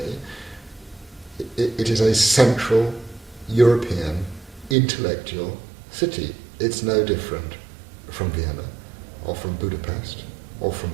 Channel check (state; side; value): drops out; left; at 4.8 s